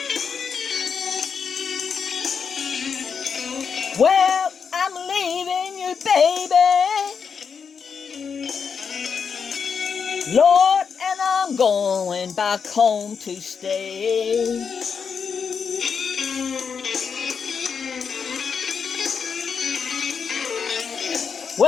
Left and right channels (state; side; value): quieter; right; 6.2 dB